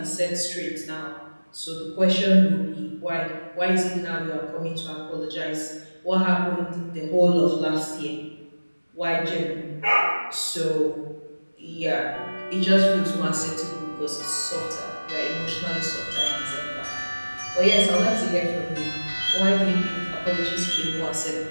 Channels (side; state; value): both; inverted; correlation -1.00